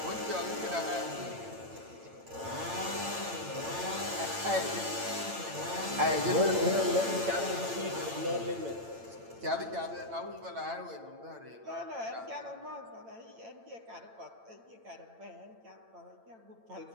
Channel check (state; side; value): late; left; 8.9 ms